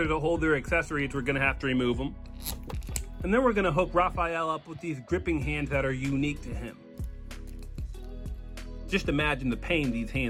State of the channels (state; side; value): identical; both; correlation 1.00